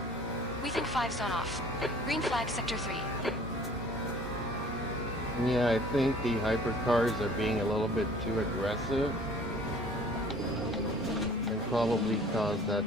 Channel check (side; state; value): both; normal; correlation 0.51